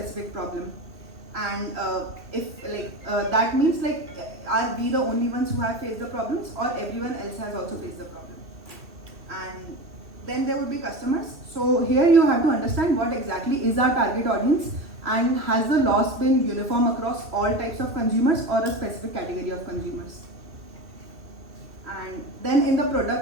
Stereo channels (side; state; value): left; late; 2.5 ms